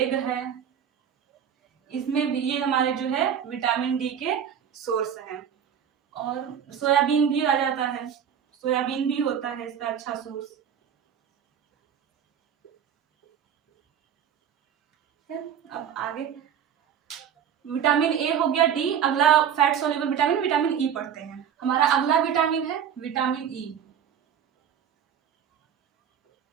है, इसमें भी ये हमारे जो है विटामिन डी के सोर्स हैं। और सोयाबीन भी आ जाता है, सोयाबीन भी होता है इसका अच्छा सोर्स। अब आगे विटामिन ए हो गया, डी। अगला fat soluble vitamin, vitamin E पढ़ते हैं। हमारा अगला विटामिन है विटामिन ई।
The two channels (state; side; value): quieter; left; 8.5 dB